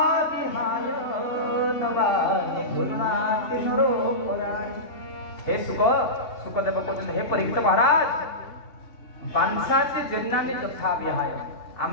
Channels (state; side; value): late; right; 2.7 ms